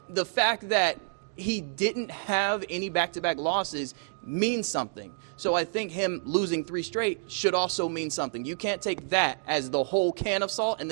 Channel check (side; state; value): left; silent; digital silence